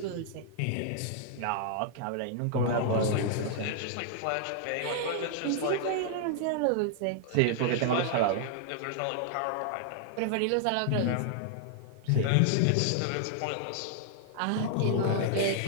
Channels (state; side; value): different; both; correlation -0.01